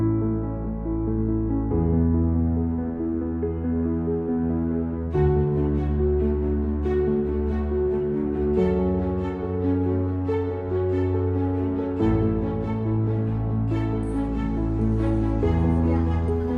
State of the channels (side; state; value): both; identical; correlation 1.00